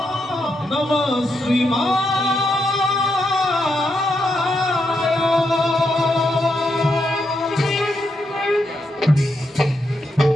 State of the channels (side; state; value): both; normal; correlation 0.82